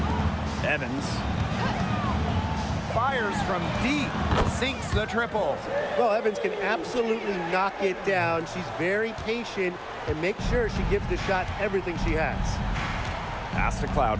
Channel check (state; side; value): identical; both; correlation 1.00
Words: Evans. Fires from deep. Sinks the triple. Well, Evans can absolutely knock it down. She's very patient and makes sure she gives the shot everything she has. Pass to